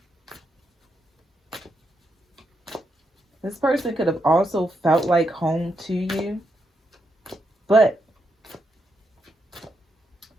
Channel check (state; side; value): normal; both; correlation 0.81